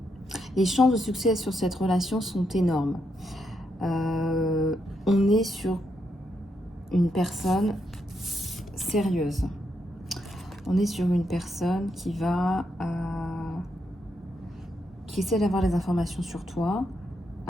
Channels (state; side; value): normal; both; correlation 0.81